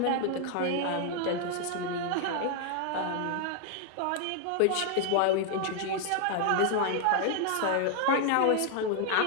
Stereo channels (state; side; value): different; both; correlation 0.00